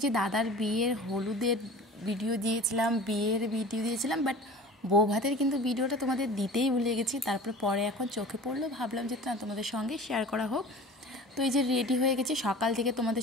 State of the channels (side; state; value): both; normal; correlation 0.40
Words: যে দাদার বিয়ের হলুদের ভিডিও দিয়েছিলাম, বিয়ের ভিডিও দিয়েছিলাম, বাট বউ ভাতের কিন্তু ভিডিওটা তোমাদের দিতেই ভুলে গেছি। তারপরে পরে এখন চোখে পড়লো, ভাবলাম যে না, তোমাদের সঙ্গে শেয়ার করা হোক। তো এই যে রেডি হয়ে গেছি, সকাল থেকে